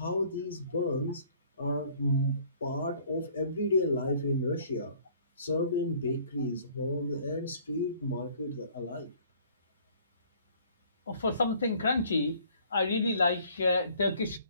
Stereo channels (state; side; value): inverted; both; correlation -0.56